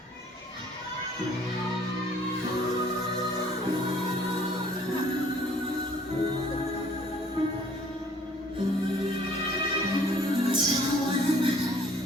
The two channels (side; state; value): both; normal; correlation 0.57